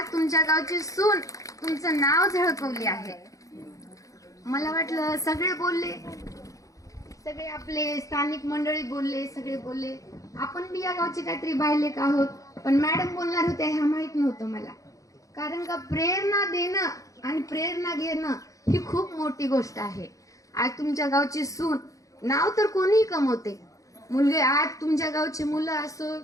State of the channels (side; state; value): right; late; 0.16 ms